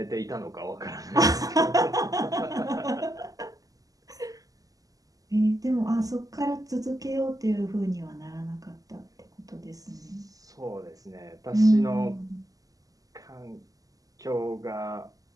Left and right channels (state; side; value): late; left; 0.17 ms